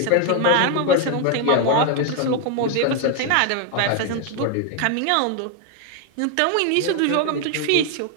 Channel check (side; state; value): both; different; correlation 0.01